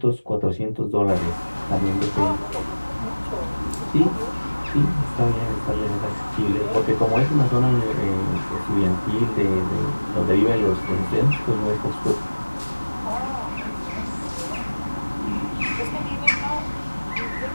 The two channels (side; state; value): both; inverted; correlation -1.00